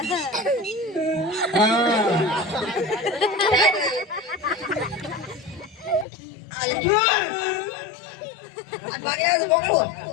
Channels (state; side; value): drops out; right; at 6.1 s